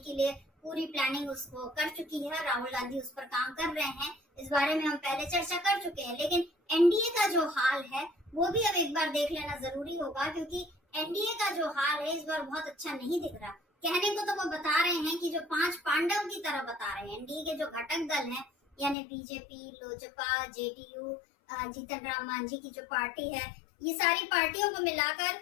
लिए पूरी प्लानिंग उसको कर चुकी है, राहुल गांधी उस पर काम कर रहे हैं। इस बारे में हम पहले चर्चा कर चुके हैं। लेकिन एनडीए का जो हाल है वो भी अब एक बार देख लेना जरूरी होगा, क्योंकि एनडीए का जो हाल है इस बार बहुत अच्छा नहीं दिख रहा। कहने को तो वो बता रहे हैं कि जो 5 पांडव की तरह बता रहे हैं, एनडीए के जो घटक दल हैं यानी बीजेपी, लोजपा, जेडीयू, जीतन राम मांझी की जो पार्टी है, ये सारी पार्टियों को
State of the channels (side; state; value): right; drops out; at 18.9 s